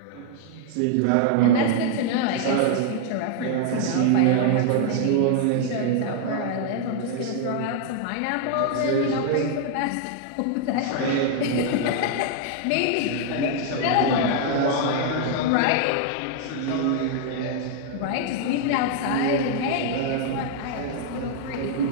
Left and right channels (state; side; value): different; both; correlation 0.00